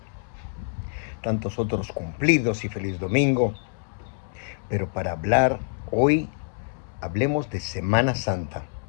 tantos otros cumplidos y feliz domingo. Pero para hablar hoy, hablemos de Semana Santa.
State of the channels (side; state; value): right; silent; 61 dB below the other